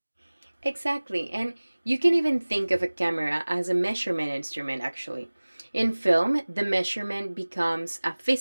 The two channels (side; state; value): both; inverted; correlation -1.00